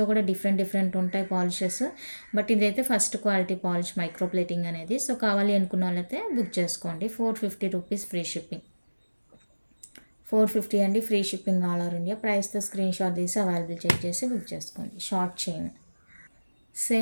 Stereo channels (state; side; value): inverted; both; correlation -1.00